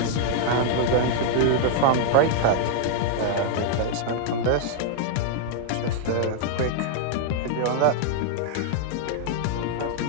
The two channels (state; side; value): different; both; correlation -0.01